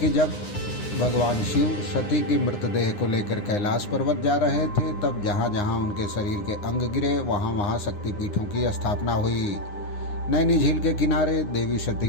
जब भगवान शिव सती की मृतदेह को लेकर कैलाश पर्वत जा रहे थे, तब जहाँ जहाँ उनके शरीर के अंग गिरे वहाँ वहाँ शक्तिपीठों की स्थापना हुई। नैनी झील के किनारे देवी सती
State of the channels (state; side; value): late; right; 9.7 ms